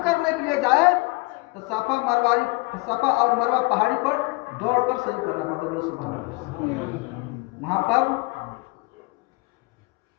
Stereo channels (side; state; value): right; quieter; 26.0 dB